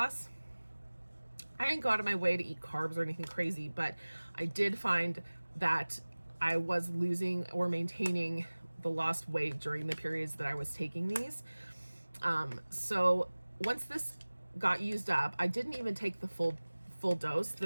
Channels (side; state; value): both; inverted; correlation -1.00